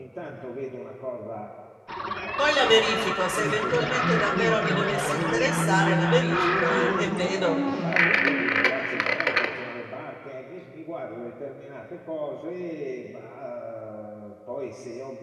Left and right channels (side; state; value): both; identical; correlation 1.00